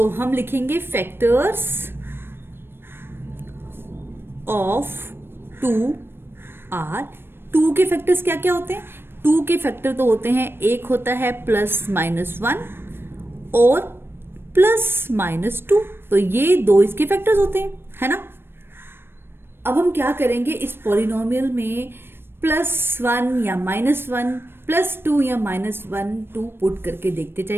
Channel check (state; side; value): late; left; 0.11 ms